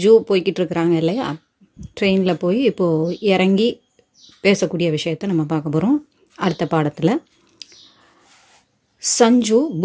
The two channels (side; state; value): both; identical; correlation 1.00